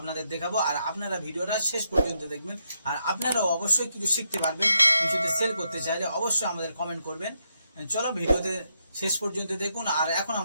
দেখাবো। আর আপনারা ভিডিওটা শেষ পর্যন্ত দেখবেন আর আপনারাও অবশ্যই কিছু শিখতে পারবেন। কিছুতে সেল করতে চাইলে অবশ্যই আমাদের কমেন্ট করবেন। চলো ভিডিওতে শেষ পর্যন্ত দেখুন। আর এখন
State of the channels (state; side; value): inverted; both; correlation -0.80